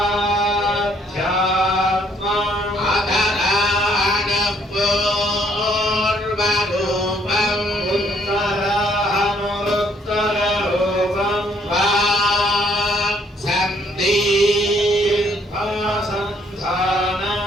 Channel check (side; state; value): both; normal; correlation 0.66